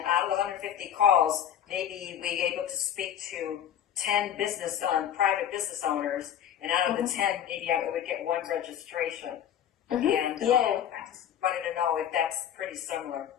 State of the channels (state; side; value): quieter; right; 9.9 dB